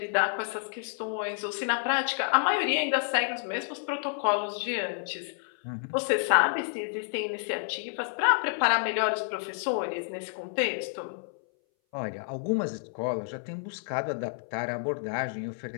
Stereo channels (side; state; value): right; silent; 58 dB below the other